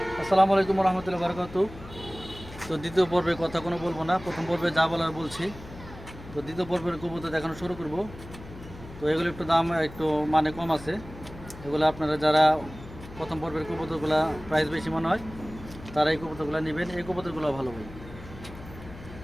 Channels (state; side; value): noise; left; hum, 16 dB below the sound